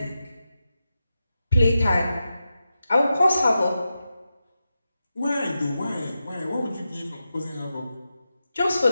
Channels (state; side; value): inverted; both; correlation -0.90